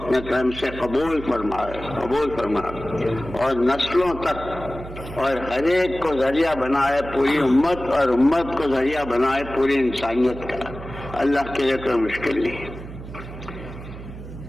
کرم سے قبول فرمائے اور نسلوں تک اور ہر ایک کو ذریعہ بنائے پوری امت، اور امت کو ذریعہ بنائے پوری انسانیت کا۔ اللہ کے لیے کوئی مشکل نہیں۔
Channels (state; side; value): noise; right; hum, 12 dB below the sound